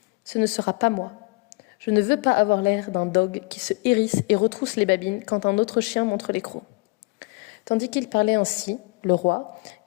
Ce ne sera pas moi. Je ne veux pas avoir l'air d'un dogue qui se hérisse et retrousse les babines quand un autre chien montre les crocs. Tandis qu'il parlait ainsi, le roi,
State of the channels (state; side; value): quieter; right; 28.1 dB